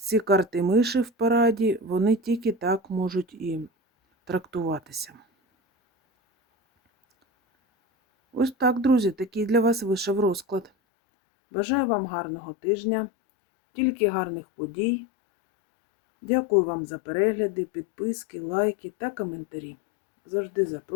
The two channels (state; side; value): drops out; right; at 10.7 s